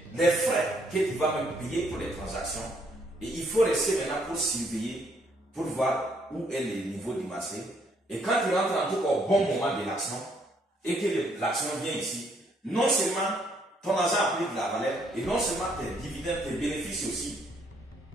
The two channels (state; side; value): normal; both; correlation 0.69